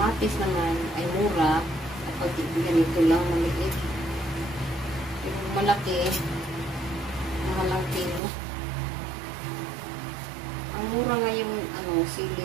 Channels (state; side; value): drops out; left; at 8.2 s